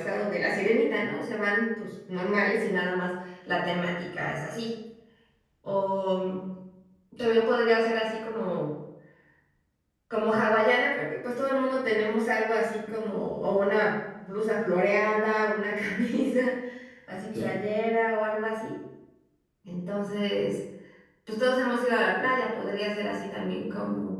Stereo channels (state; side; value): identical; both; correlation 1.00